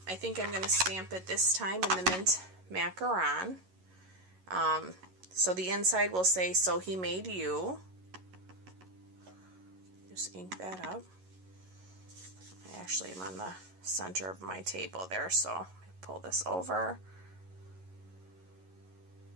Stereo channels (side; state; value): left; late; 11 ms